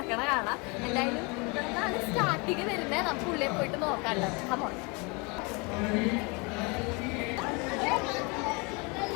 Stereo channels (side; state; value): right; quieter; 29.6 dB